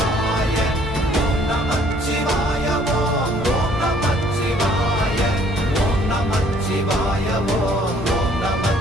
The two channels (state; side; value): normal; both; correlation 0.60